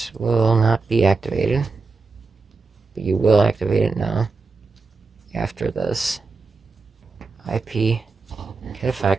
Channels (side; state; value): left; quieter; 4.2 dB